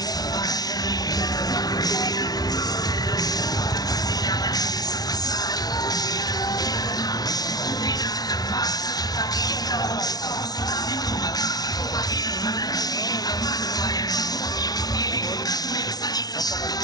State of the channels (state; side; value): late; right; 0.19 ms